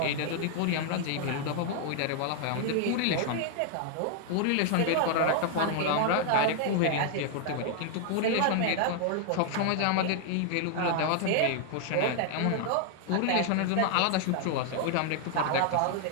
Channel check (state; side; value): different; both; correlation 0.00